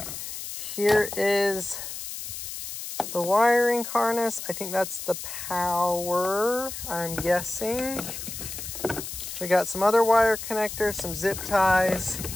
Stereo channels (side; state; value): left; noise; hiss, 8 dB below the sound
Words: Here is the wiring harness. I think that's the power, I'm guessing. We got some other wire connectors, some zip ties,